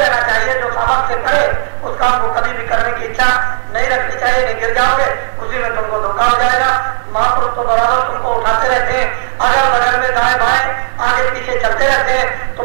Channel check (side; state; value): left; silent; digital silence